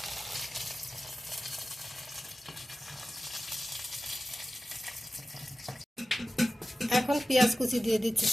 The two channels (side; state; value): both; normal; correlation 0.94